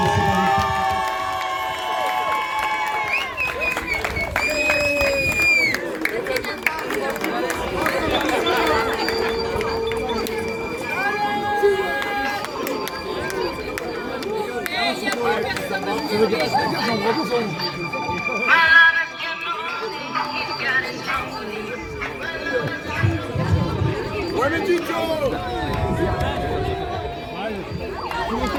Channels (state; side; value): identical; both; correlation 1.00